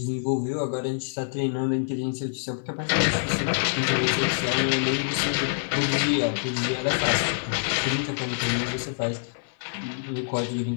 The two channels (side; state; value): right; silent; 61 dB below the other